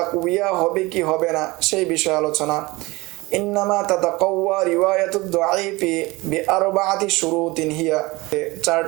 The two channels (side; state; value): left; quieter; 22.5 dB